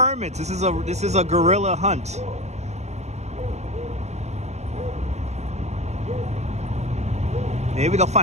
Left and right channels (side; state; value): left; late; 0.32 ms